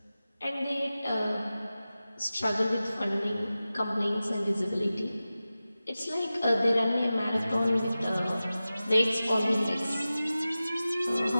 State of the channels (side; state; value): both; inverted; correlation -0.95